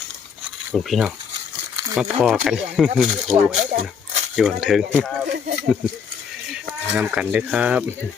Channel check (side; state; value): right; quieter; 6.6 dB